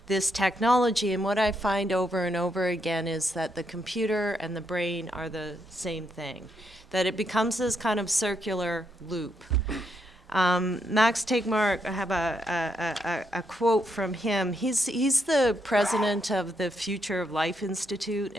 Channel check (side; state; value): both; normal; correlation 0.78